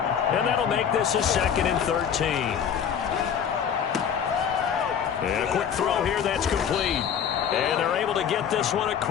And that'll make this a 2nd and 13. And a quick throw here that's complete. And they're able to get this one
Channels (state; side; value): quieter; right; 8.1 dB